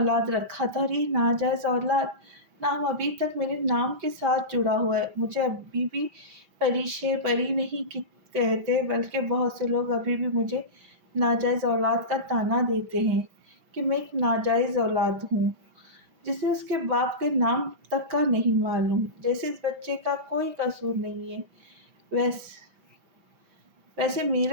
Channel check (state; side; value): late; left; 5.1 ms